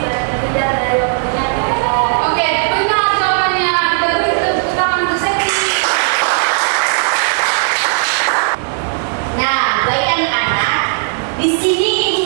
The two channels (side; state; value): left; silent; digital silence